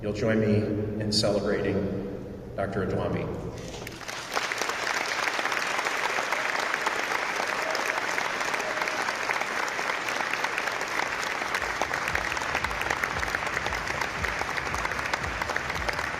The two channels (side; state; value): both; identical; correlation 1.00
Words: join me in celebrating Dr. Odume.